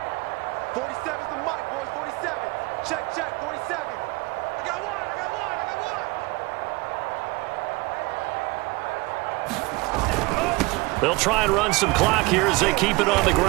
47's the mic, boys. 47. Check, 47. I got one. They'll try and run some clock here as they keep it on the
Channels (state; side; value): quieter; left; 23.7 dB